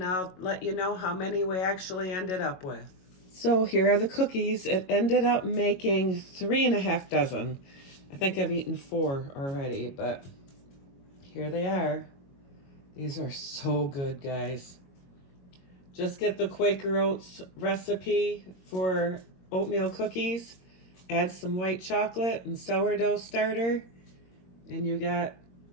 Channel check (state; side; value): late; right; 22 ms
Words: I'll let you know how many we actually ended up with. So here are the cookies. It ended up making 3.5 dozen. I think I've eaten 4 already, but here they are. These are so good, guys. Just get the Quaker Oats recipe for oatmeal cookies, add some white chocolate and sourdough starter, and you got